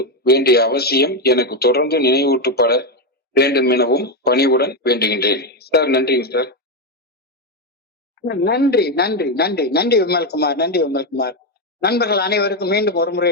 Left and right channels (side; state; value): both; normal; correlation 0.07